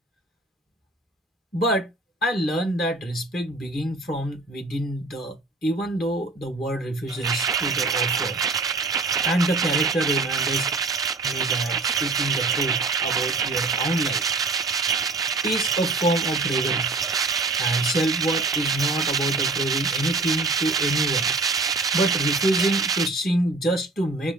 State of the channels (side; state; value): left; quieter; 3.3 dB